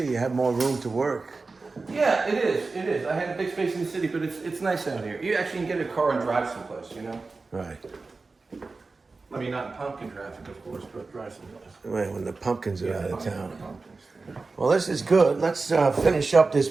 You have more room to work. Yeah, it is. It is. I had a big space in the city, but it's nice out here. You actually can get a car and drive someplace, you know? Right. I mean, not in pumpkin traffic, of course, but drive someplace. When the pumpkins are out of town. Pumpkins. Well, this is good. Let's finish up this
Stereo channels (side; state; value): left; quieter; 3.9 dB